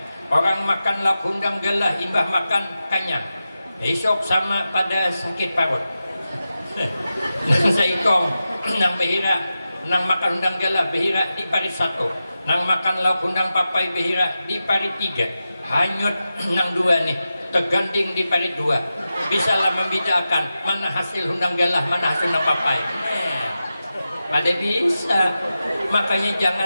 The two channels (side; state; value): both; inverted; correlation -0.92